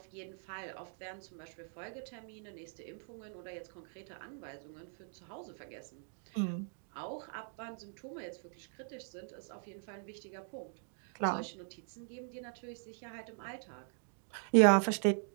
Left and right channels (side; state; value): left; silent; 51 dB below the other